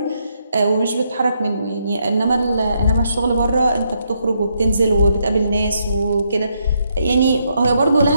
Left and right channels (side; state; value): both; inverted; correlation -0.77